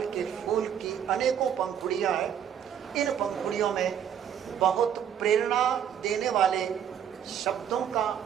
के फूल की अनेकों पंखुड़ियां हैं। इन पंखुड़ियों में बहुत प्रेरणा देने वाले शब्दों का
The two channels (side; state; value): left; quieter; 9.0 dB